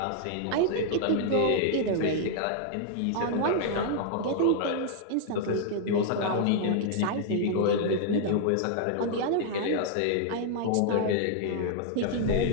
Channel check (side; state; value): both; different; correlation -0.01